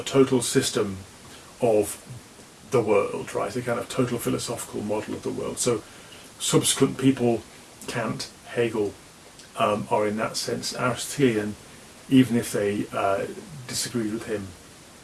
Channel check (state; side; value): identical; both; correlation 1.00